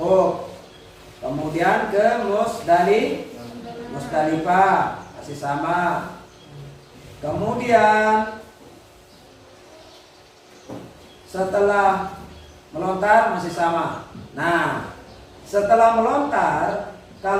Kemudian ke Musdalifah, masih sama. Kemudian setelah melontar masih sama. Nah, setelah melontar,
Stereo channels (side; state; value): both; identical; correlation 1.00